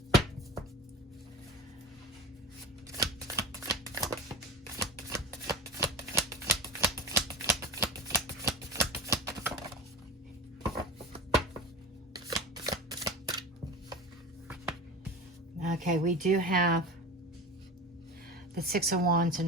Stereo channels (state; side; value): normal; both; correlation 0.30